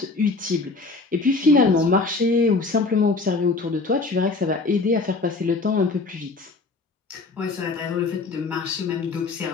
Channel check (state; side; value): quieter; right; 3.8 dB